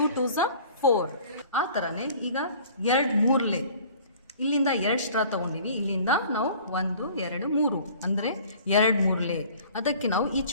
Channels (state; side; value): inverted; both; correlation -0.49